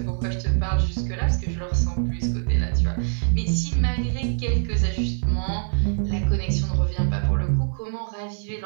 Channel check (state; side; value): silent; left; 63 dB below the other